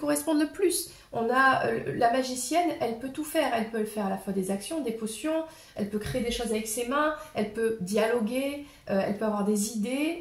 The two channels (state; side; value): identical; both; correlation 1.00